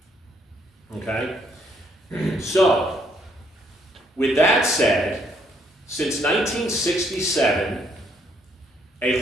Okay? So, with that said, since 1967, A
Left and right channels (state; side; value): normal; both; correlation 0.69